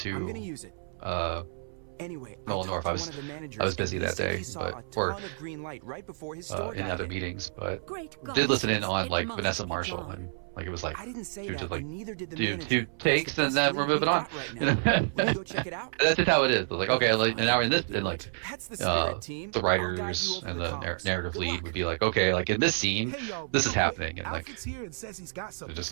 Nolan North. I was busy that day, but or in other meetings, but did listen in on like Vanessa Marshall, and like it was like she was just like do 2 takes and then we're moving on. You know? That's just how it is. Like okay, like and now we're in this, and like the writers and the narrative lead would be like okay, like in this scene, this is happening, and like it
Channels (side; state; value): left; silent; 58 dB below the other